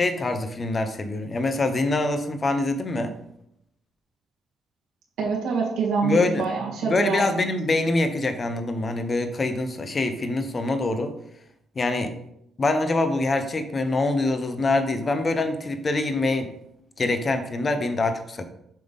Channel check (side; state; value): both; normal; correlation 0.81